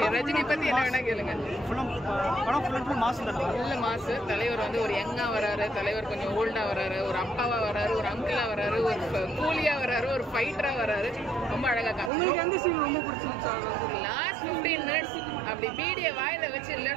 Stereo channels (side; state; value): left; drops out; at 12.1 s